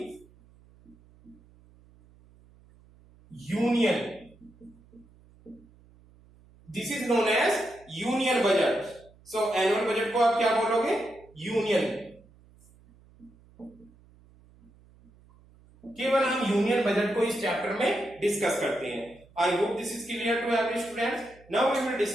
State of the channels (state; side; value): noise; right; hum, 27 dB below the sound